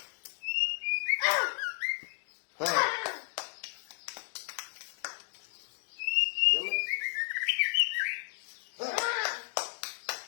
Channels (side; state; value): right; silent; digital silence